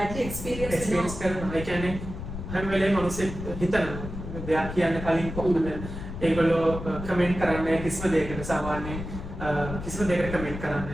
එක්ස්පීරියන්ස් කරනවා. ඒ කියන්නේ හැම වෙලේම මිනිස්සු හිතනවා දෙයක් කියන්න කලින් කොහොමද ඒගොල්ලෝ කමෙන්ට් කරන්නේ කිසිම දෙයකට සාමාන්‍යයෙන් කිසිම දෙයකට කමෙන්ට්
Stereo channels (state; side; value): noise; left; rumble, 8 dB below the sound